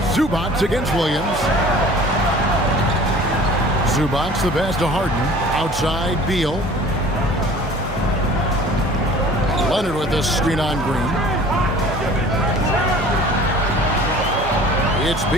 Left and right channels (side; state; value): both; normal; correlation 0.47